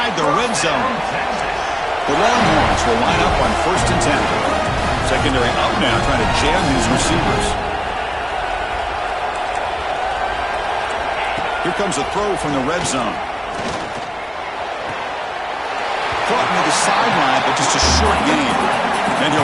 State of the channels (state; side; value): identical; both; correlation 1.00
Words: the red zone. The Longhorns will line up on 1st and 10. Secondary up now, trying to jam these receivers. Here comes a throw from the red zone. Caught near the sideline, but just a short gain. Then